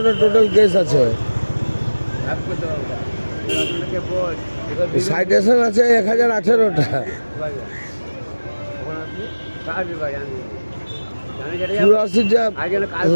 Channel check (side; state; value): both; inverted; correlation -1.00